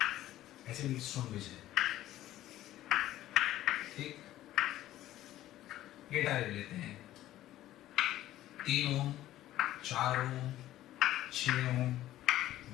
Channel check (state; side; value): quieter; right; 14.1 dB